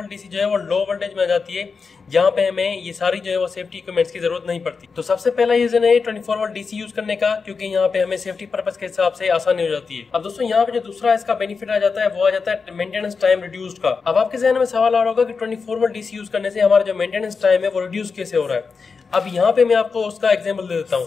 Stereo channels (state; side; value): quieter; right; 5.0 dB